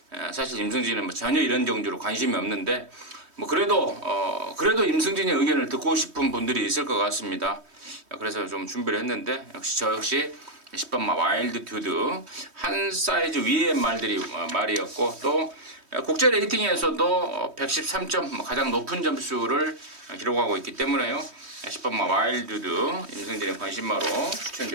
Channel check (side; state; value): left; late; 3.2 ms